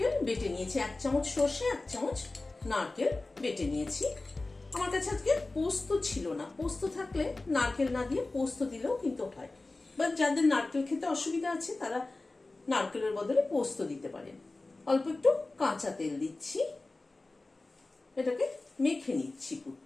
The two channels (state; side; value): quieter; right; 3.2 dB